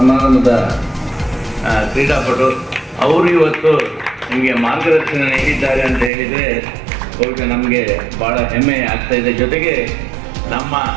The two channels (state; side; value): drops out; left; at 6.1 s